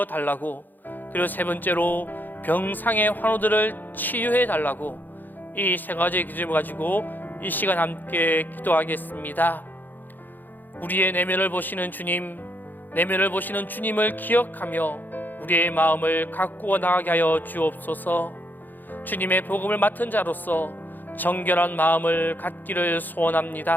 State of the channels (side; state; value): right; late; 0.087 ms